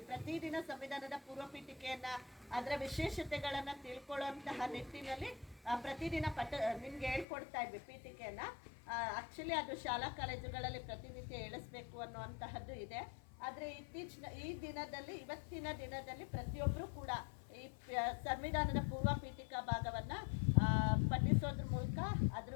ಪ್ರತಿದಿನ ಸಂವಿಧಾನದ ಪೂರ್ವ ಪೀಠಿಕೆಯನ್ನ ಅದರ ವಿಶೇಷತೆಗಳನ್ನ ತಿಳ್ಕೊಳ್ಳುವಂತಹ ನಿಟ್ಟಿನಲ್ಲಿ ಪ್ರತಿದಿನ ನಿಮ್ಗೆ ಹೇಳ್ಕೊಡ್ತಾ ಇದ್ವಿ ಪೀಠಿಕೆಯನ್ನ. ಆಕ್ಚುಲಿ ಅದು ಶಾಲಾ ಕಾಲೇಜುಗಳಲ್ಲಿ ಪ್ರತಿನಿತ್ಯ ಹೇಳಿಸ್ಬೇಕು ಅನ್ನುವಂತಹದ್ದು ಇದೆ. ಆದರೆ ಇವತ್ತಿನ ದಿನದಲ್ಲಿ ಪ್ರತಿಯೊಬ್ಬರು ಕೂಡ ಈ ಸಂವಿಧಾನದ ಪೂರ್ವ ಪೀಠಿಕಾ ಭಾಗವನ್ನ ಪಠಿಸೋದ್ರ ಮೂಲಕ ಅದ್ರ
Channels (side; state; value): right; drops out; at 7.2 s